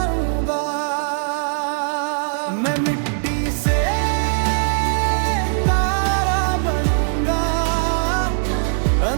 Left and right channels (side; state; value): left; silent; digital silence